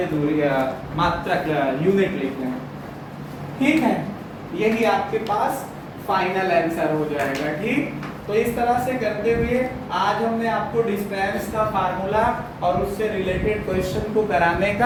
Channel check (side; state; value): both; identical; correlation 1.00